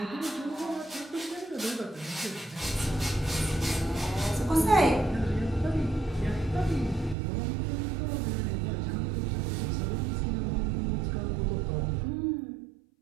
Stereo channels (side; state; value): left; drops out; at 7.2 s